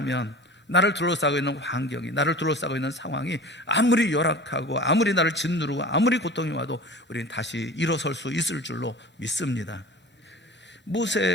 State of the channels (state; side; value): normal; both; correlation 0.38